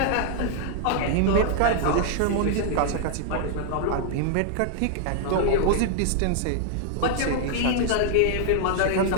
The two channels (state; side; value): different; both; correlation -0.01